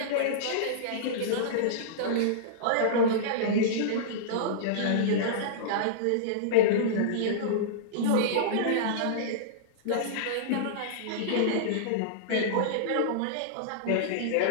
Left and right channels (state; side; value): different; both; correlation -0.02